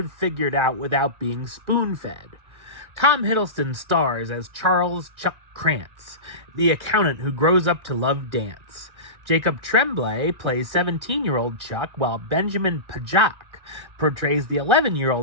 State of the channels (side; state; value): left; late; 1.9 ms